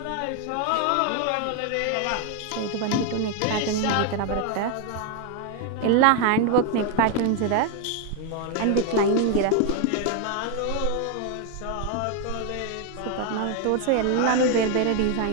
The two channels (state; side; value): different; both; correlation 0.01